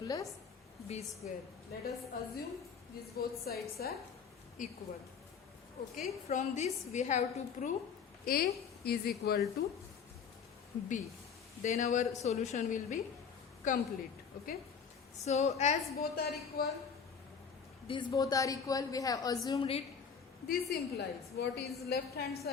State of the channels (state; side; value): quieter; right; 6.5 dB